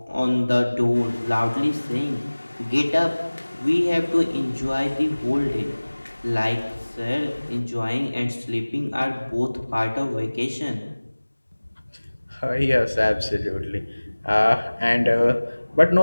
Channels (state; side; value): inverted; both; correlation -1.00